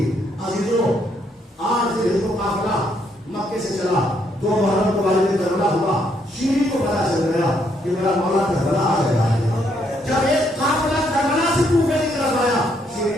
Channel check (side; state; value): both; normal; correlation 0.73